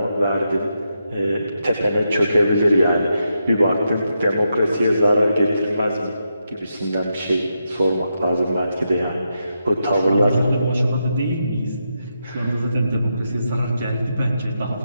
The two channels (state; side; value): inverted; both; correlation -0.84